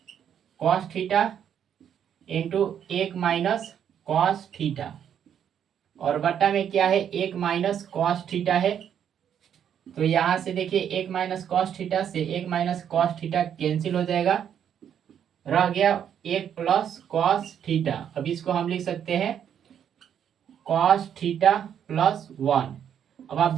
cos theta into 1 minus cos theta, और बट्टा में क्या है 1 माइनस कॉस थीटा है। तो यहां से देखिए 1 माइनस कॉस थीटा से 1 माइनस कॉस थीटा कैंसिल हो जाएगा, रह गया 1 प्लस कॉस थीटा। अब इसको हम लिख सकते हैं कॉस थीटा प्लस 1। अब आप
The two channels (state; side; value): quieter; left; 8.9 dB